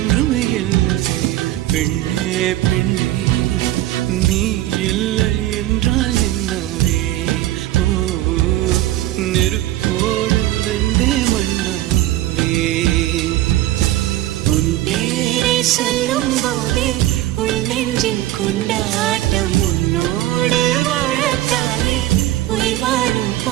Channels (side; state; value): left; quieter; 15.0 dB